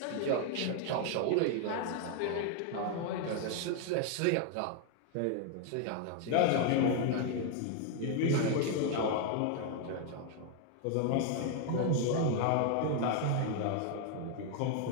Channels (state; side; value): different; both; correlation 0.00